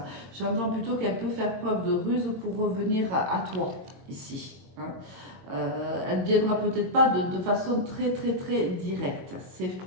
J'entends plutôt qu'elle peut faire preuve de ruse pour revenir à toi, ici. Hein. Elle ne viendra peut-être pas de façon très directe. C'est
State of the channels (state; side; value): late; left; 22 ms